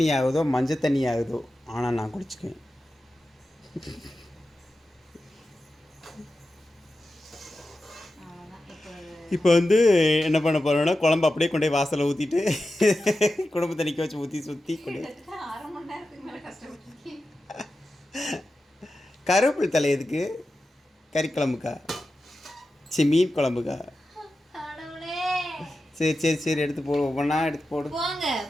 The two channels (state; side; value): normal; both; correlation 0.92